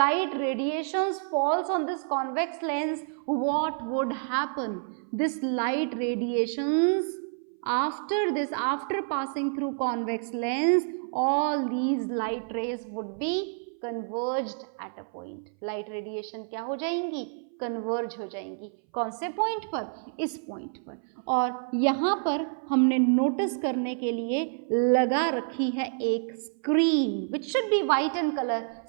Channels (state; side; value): silent; left; 59 dB below the other